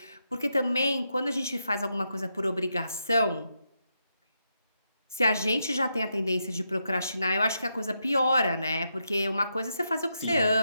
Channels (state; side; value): inverted; both; correlation -0.83